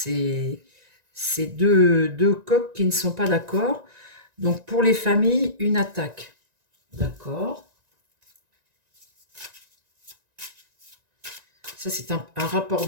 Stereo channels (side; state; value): left; late; 1.9 ms